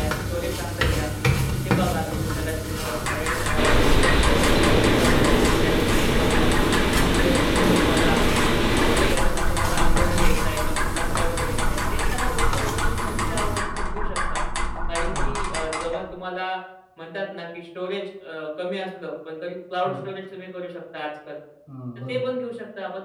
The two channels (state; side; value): identical; both; correlation 1.00